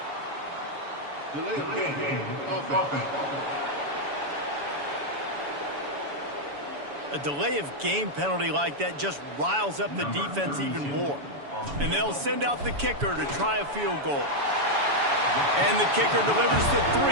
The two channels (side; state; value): left; late; 7.0 ms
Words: Delay of game. Offense. A delay of game penalty like that just riles up the defense even more. And they'll send out the kicker to try a field goal. And the kicker delivers the